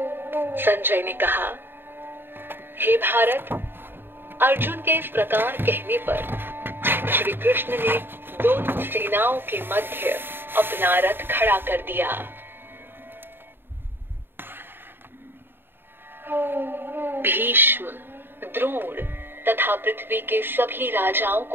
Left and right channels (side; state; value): left; late; 0.10 ms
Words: संजय ने कहा, हे भारत, अर्जुन के इस प्रकार कहने पर श्री कृष्ण ने दोनों सेनाओं के मध्य अपना रथ खड़ा कर दिया। भीष्म, द्रोण तथा पृथ्वी के सभी राजाओं